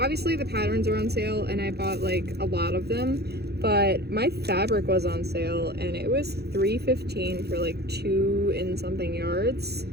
obviously the patterns are on sale and I bought like a lot of them, but my fabric was on sale and it was $3.15 for like 2 and something yards.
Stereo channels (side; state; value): left; late; 0.47 ms